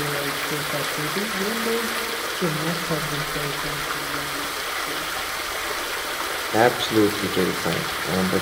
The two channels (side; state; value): both; identical; correlation 1.00